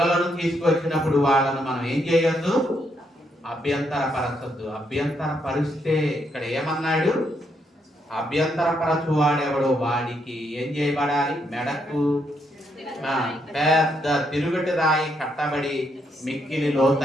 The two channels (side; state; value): both; normal; correlation 0.76